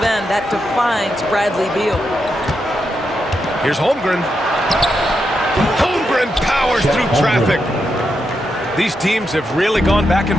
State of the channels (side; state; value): both; normal; correlation 0.84